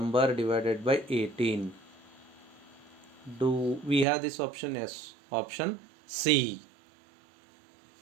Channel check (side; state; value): left; drops out; at 4.0 s